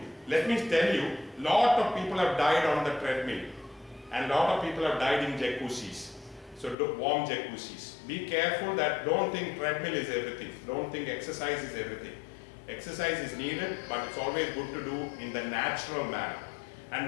Let me tell you, lot of people have died on the treadmill and lot of people have died in jacuzzis. So warm jacuzzis. Be careful that don't think treadmill is everything. Don't think exercise is everything. Exercise is needed, but it's always good to do in the natural manner. And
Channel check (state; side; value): drops out; right; at 6.8 s